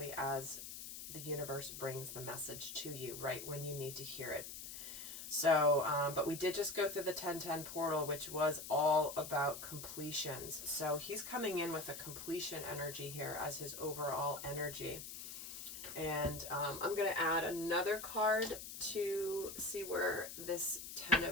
as the universe brings the message to you right when you need to hear it. So, but we did just go through the 1010 portal, which was all about completions. So he's coming in with a completion energy here as his overall energy. And I'm going to add another card to see where this 10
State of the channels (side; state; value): left; noise; hiss, 9 dB below the sound